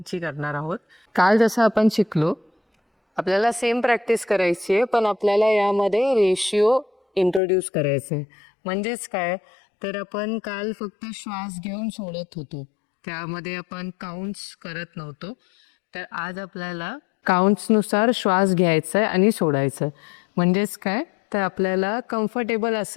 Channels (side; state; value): right; drops out; at 7.4 s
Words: करणार आहोत. काल जसं आपण शिकलो, आपल्याला सेम प्रॅक्टिस करायची आहे, पण आपल्याला यामध्ये रेशिओ इंट्रोड्यूस करायचं आहे. म्हणजेच काय, तर आपण काल फक्त श्वास घेऊन सोडत होतो, त्यामध्ये आपण काउंट्स करत नव्हतो. तर आज आपल्याला काउंट्सनुसार श्वास घ्यायचा आहे आणि सोडायचं आहे. म्हणजेच काय, तर आपल्याला कम्फर्टेबल